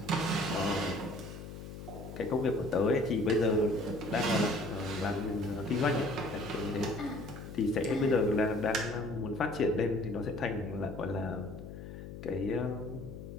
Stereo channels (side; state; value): left; noise; hum, 11 dB below the sound